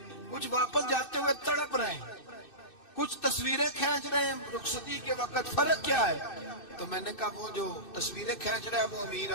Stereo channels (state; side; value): late; right; 2.6 ms